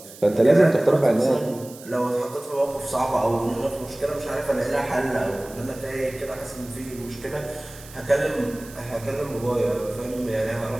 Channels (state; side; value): noise; right; hiss, 19 dB below the sound